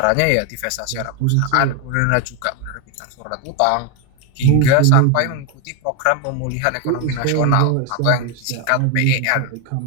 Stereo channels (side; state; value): both; different; correlation 0.01